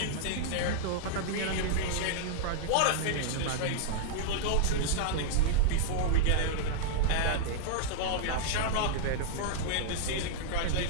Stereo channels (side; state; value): both; different; correlation -0.01